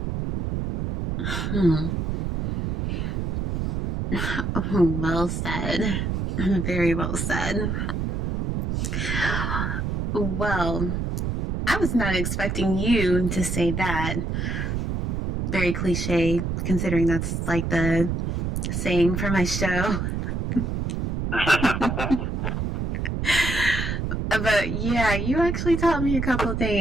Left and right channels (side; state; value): right; noise; rumble, 1 dB below the sound